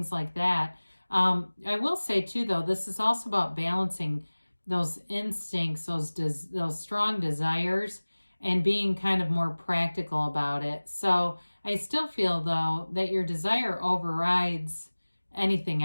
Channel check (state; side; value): inverted; both; correlation -1.00